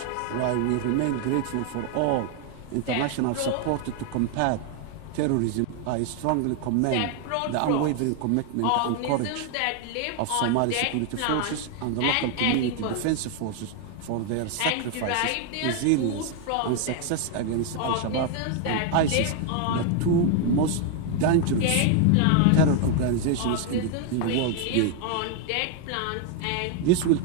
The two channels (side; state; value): both; different; correlation 0.00